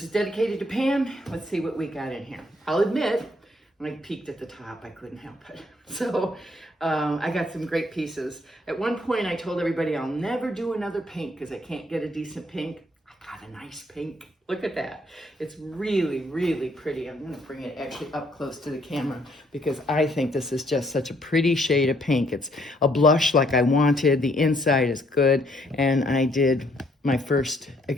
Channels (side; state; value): both; normal; correlation 0.68